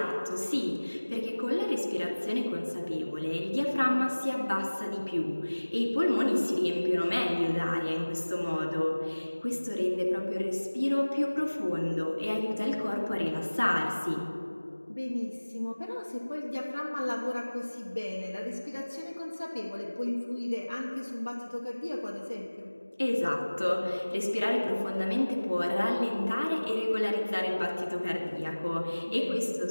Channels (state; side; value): inverted; both; correlation -1.00